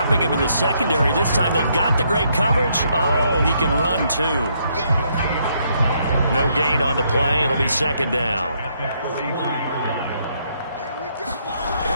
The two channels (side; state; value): both; inverted; correlation -0.73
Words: him in the secondary. This time they've got the great coverage. Oh, he can run too. No gain on the play. It'll be second down.